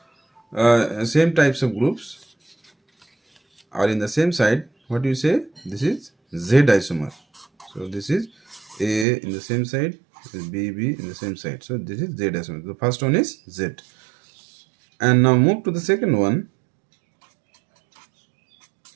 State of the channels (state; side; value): drops out; left; at 9.1 s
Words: types of groups are in the same side, what do you say? This is Z isomer. So this is A in the same side, this is B in the same side. So this is Z isomer. The first one is Z. And now move to the second one.